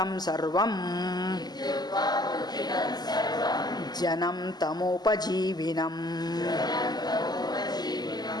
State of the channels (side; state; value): right; late; 0.20 ms